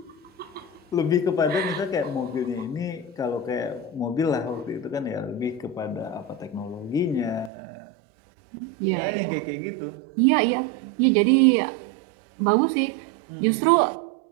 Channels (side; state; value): left; drops out; at 7.5 s